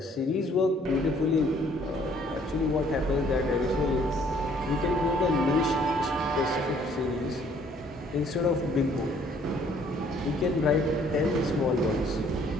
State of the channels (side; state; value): both; normal; correlation 0.61